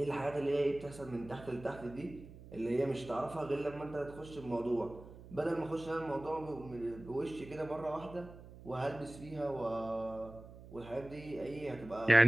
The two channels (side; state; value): right; noise; hum, 17 dB below the sound